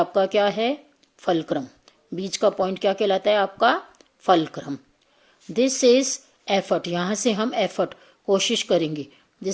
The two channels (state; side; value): identical; both; correlation 1.00